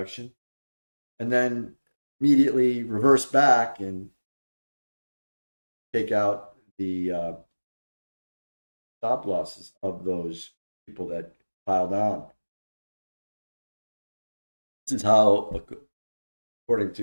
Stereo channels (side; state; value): both; inverted; correlation -1.00